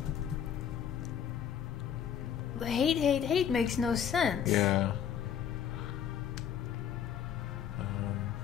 The hate, hate, hate makes no sense. Yeah.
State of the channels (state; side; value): quieter; right; 8.6 dB